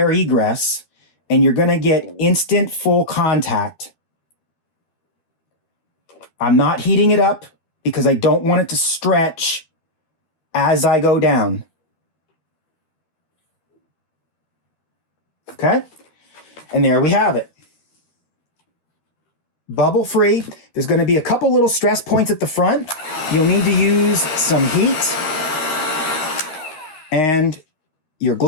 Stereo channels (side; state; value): right; late; 12 ms